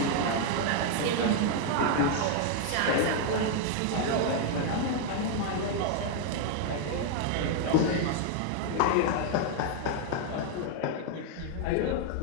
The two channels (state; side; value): different; both; correlation 0.00